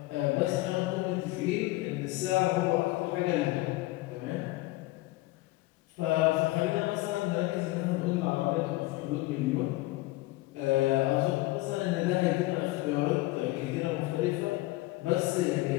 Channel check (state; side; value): quieter; right; 19.4 dB